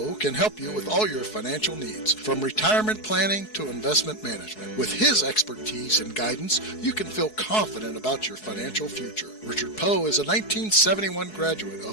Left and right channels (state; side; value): late; right; 4.7 ms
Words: can help you with all your financial needs, from retirement planning to investment management. With his expertise and guidance, you can feel confident about your financial future. Richard Poe is a 1971 graduate